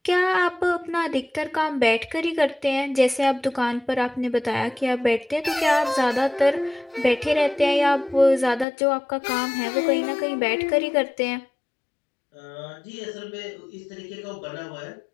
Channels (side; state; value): right; drops out; at 8.7 s